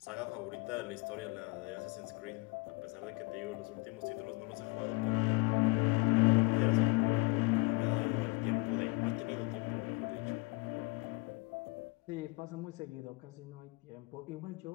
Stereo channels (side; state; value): right; quieter; 26.9 dB